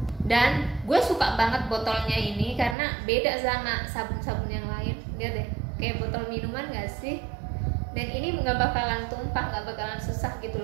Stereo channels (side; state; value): left; drops out; at 2.8 s